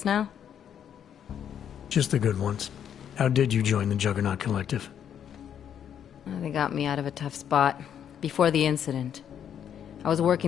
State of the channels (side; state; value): right; quieter; 9.0 dB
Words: now? Just the good ones. How did you join the Juggernaut Collective? They got me out of a tough spot. Before the incident. I was